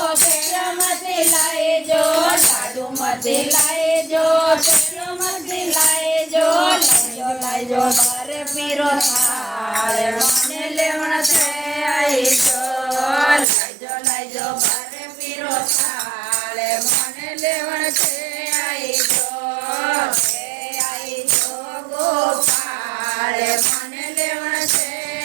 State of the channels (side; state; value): left; drops out; at 13.5 s